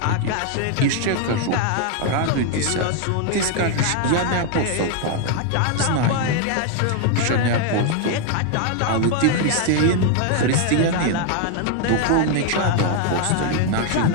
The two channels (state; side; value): different; both; correlation 0.01